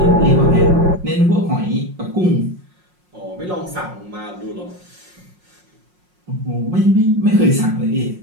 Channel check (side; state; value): left; late; 5.6 ms